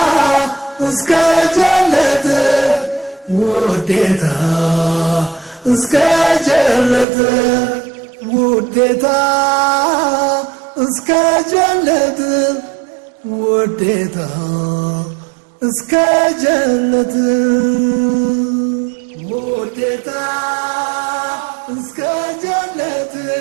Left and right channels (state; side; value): drops out; left; at 7.1 s